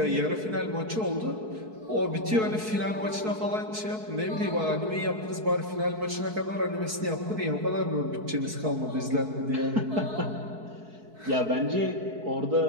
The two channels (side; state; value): left; late; 4.6 ms